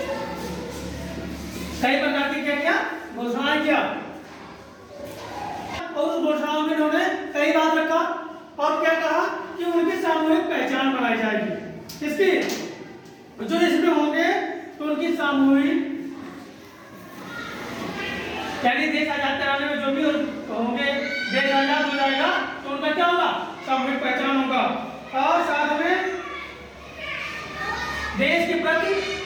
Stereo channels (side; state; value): both; identical; correlation 1.00